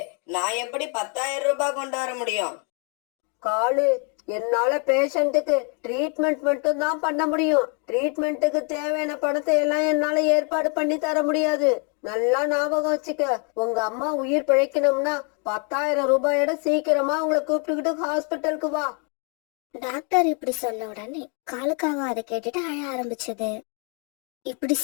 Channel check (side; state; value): right; quieter; 37.4 dB